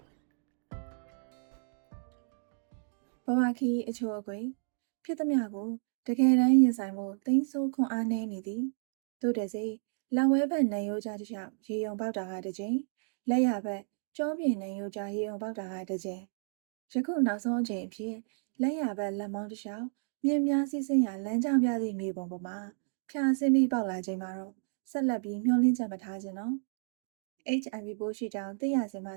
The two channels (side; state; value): left; silent; digital silence